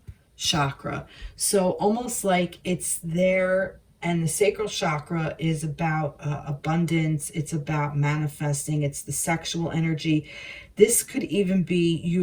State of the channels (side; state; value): both; identical; correlation 1.00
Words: chakra. So almost like it's there, and the sacral chakra is about abundance. It's about manifesting. It's the sexual energy. This could even be